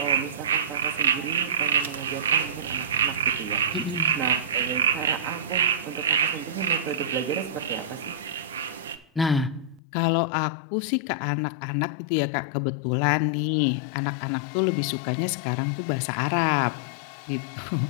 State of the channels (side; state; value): right; drops out; at 9.8 s